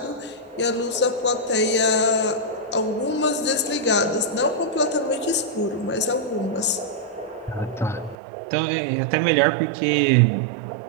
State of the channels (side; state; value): left; drops out; at 8.2 s